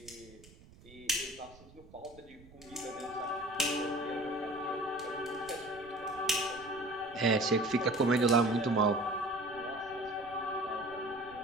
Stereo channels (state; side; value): noise; right; rumble, 22 dB below the sound